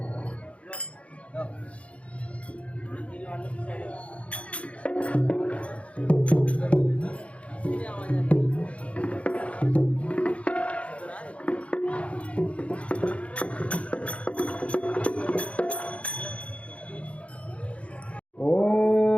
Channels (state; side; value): late; right; 0.063 ms